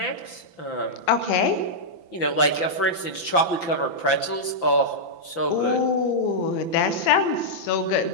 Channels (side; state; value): right; late; 5.9 ms